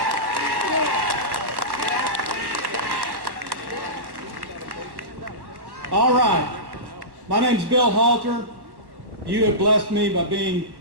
All right. My name's Bill Halter. You have blessed me by being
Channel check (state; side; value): late; left; 1.1 ms